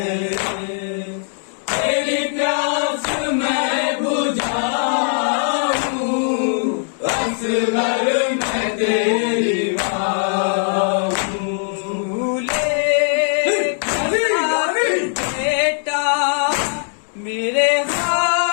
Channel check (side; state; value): right; silent; digital silence